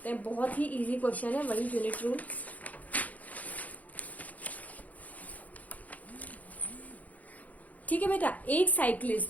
हैं, बहुत ही इजी क्वेश्चन है, वही यूनिट रूल। ठीक है बेटा, एक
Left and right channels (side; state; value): right; late; 0.075 ms